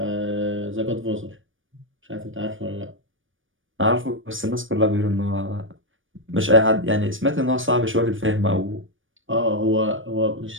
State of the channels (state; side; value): late; left; 0.57 ms